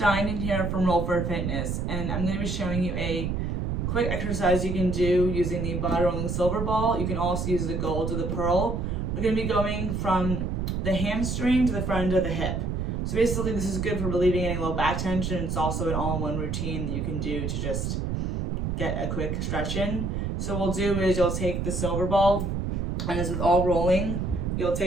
in here from Roll for Fitness, and I'm going to be showing you a quick exercise you can do using the body rolling silver ball. You can also use the gold or the pearl. We're going to be going from the hamstring to the front of the hip. So basically this is good for relieving any low back tension. It's also an all-in-one routine that you can do to just get a quick stretch in. So what we'll do is you'll take the silver ball, and as with all rolling, you'll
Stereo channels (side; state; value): right; noise; rumble, 1 dB below the sound